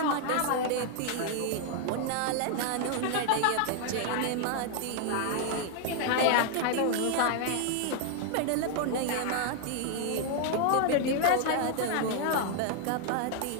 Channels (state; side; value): different; both; correlation 0.00